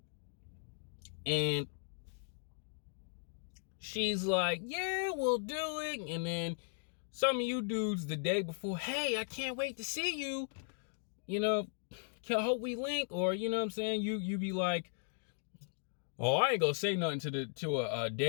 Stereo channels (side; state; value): right; silent; digital silence